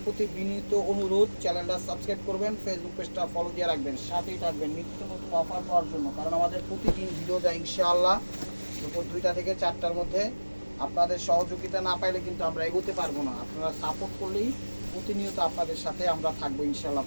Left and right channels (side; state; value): both; inverted; correlation -1.00